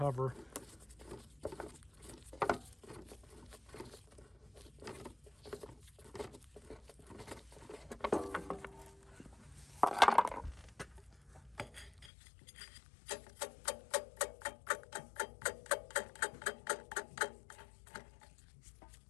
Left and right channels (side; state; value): right; drops out; at 12.1 s